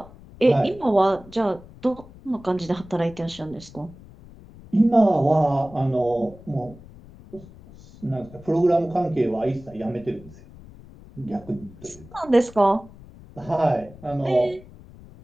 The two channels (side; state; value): left; noise; rumble, 20 dB below the sound